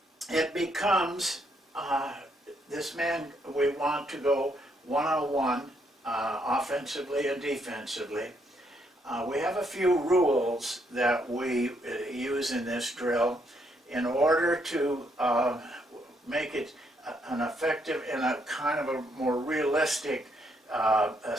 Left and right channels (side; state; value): both; normal; correlation 0.73